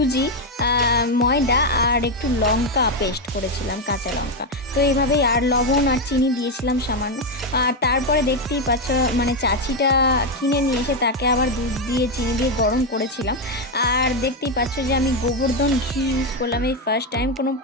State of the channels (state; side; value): normal; both; correlation 0.06